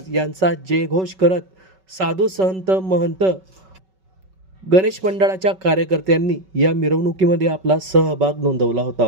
यांचा जयघोष करत साधू संत महंत गणेश मंडळाच्या कार्यकर्त्यांनी या मिरवणुकीमध्ये आपला सहभाग नोंदवला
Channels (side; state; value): left; late; 5.3 ms